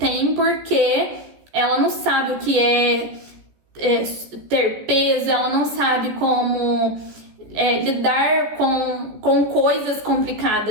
porque ela não sabe o que é ter peso, ela não sabe como lidar com coisas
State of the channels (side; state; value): left; late; 14 ms